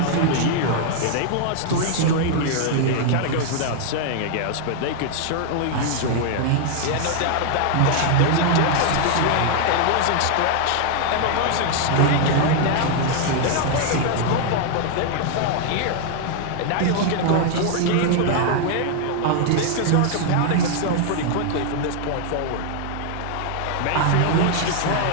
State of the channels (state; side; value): different; both; correlation 0.00